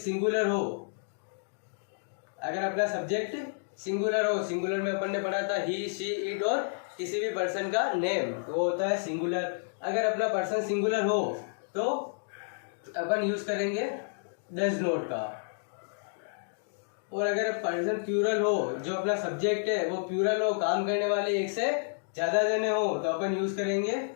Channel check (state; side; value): silent; right; digital silence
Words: हो, अगर अपना सब्जेक्ट सिंगुलर हो, सिंगुलर में अपन ने पढ़ा था ही, शी, इट और किसी भी पर्सन का नेम, वो होता है सिंगुलर। अगर अपना पर्सन सिंगुलर हो तो अपन यूज करेंगे डज नॉट का। और अगर पर्सन प्लूरल हो, जो अपना सब्जेक्ट है वो प्लूरल हो, काम करने वाले एक से ज्यादा जने हो, तो अपन यूज करेंगे